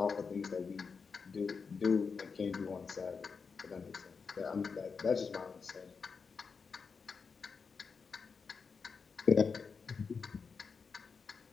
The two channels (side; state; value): right; quieter; 5.3 dB